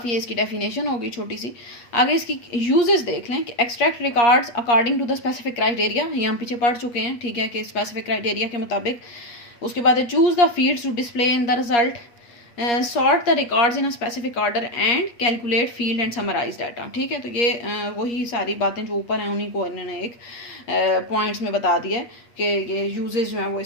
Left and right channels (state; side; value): late; right; 8.5 ms